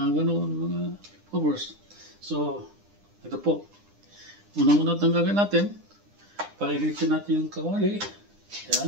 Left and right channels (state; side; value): late; left; 9.9 ms